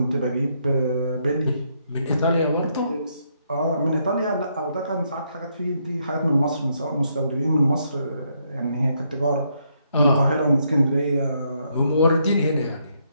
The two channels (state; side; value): inverted; both; correlation -0.75